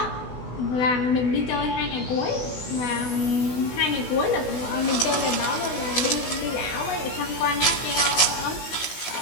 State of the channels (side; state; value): right; late; 16 ms